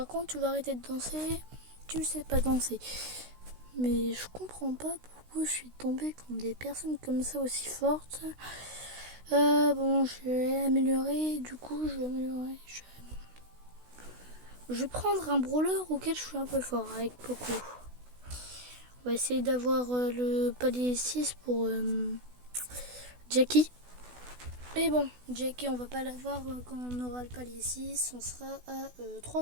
contre, tu vas arrêter de danser. Tu sais pas danser. Mais je comprends pas pourquoi je suis tombée contre des personnes comme ça aussi fortes. Bon, je vais améliorer. Du coup, je vais améliorer. Je vais prendre un brawler auquel je suis un peu fort, avec Poco. On va essayer d'avoir le palier 6 pour Jackie. Mais bon, Jackie, on va pas l'avoir quand on aura le palier 6. On sera à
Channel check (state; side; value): late; left; 16 ms